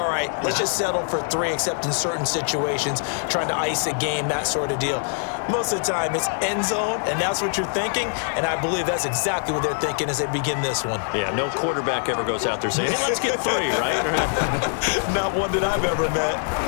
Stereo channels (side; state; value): right; silent; 63 dB below the other